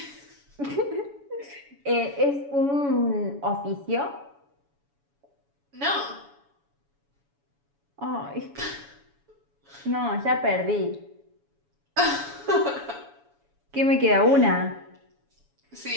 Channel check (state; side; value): late; left; 7.1 ms